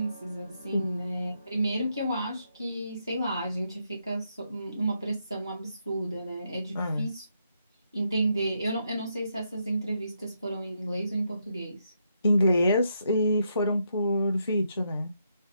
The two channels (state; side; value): inverted; both; correlation -0.79